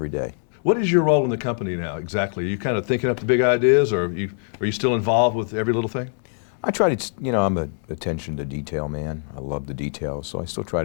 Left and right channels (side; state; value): right; silent; digital silence